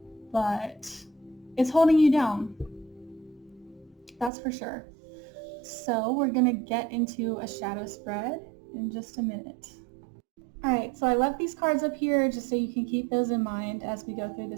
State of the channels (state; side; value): drops out; left; at 4.3 s